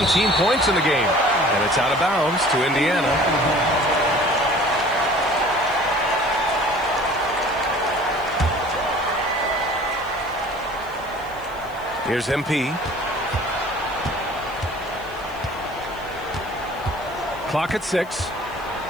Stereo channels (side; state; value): left; noise; hiss, 25 dB below the sound